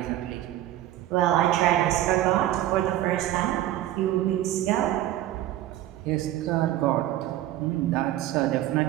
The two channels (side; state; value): left; quieter; 13.7 dB